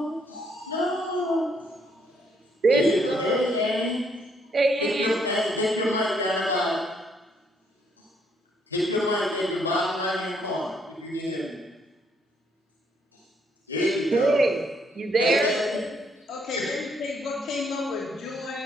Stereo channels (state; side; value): normal; both; correlation 0.70